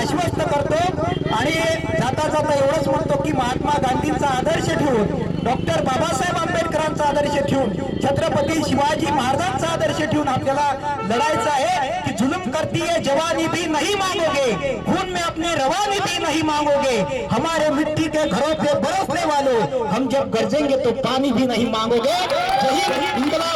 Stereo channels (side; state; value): both; identical; correlation 1.00